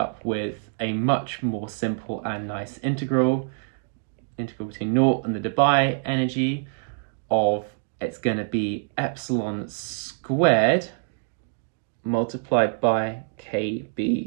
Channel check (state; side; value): silent; left; digital silence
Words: with a much more simple and nice integral between naught and the Debye energy of, it's going to be epsilon squared multiplied by